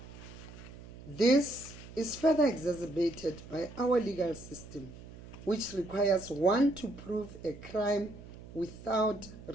This is further exacerbated by our legal system, which requires one to prove a crime without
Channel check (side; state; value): right; noise; hum, 16 dB below the sound